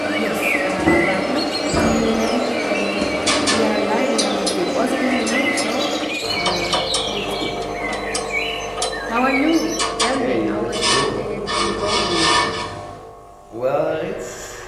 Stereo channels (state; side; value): identical; both; correlation 1.00